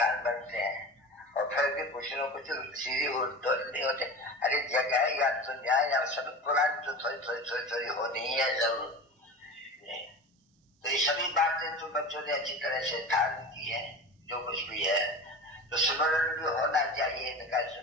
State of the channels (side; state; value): both; normal; correlation 0.32